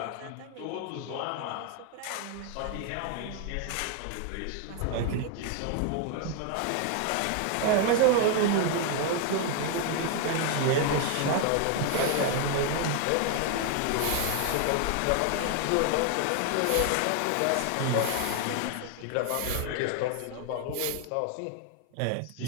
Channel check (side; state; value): both; different; correlation 0.00